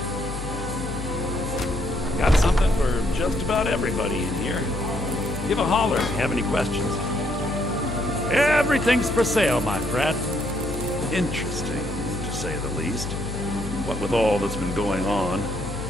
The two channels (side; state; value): left; noise; hum, 7 dB below the sound